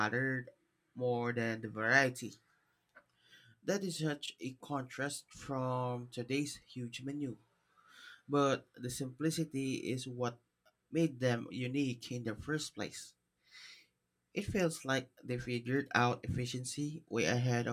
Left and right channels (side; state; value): both; identical; correlation 1.00